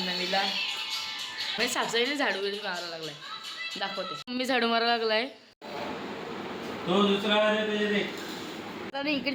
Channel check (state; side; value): identical; both; correlation 1.00